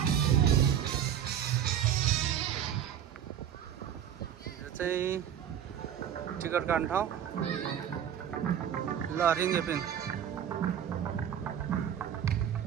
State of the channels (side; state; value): left; quieter; 9.5 dB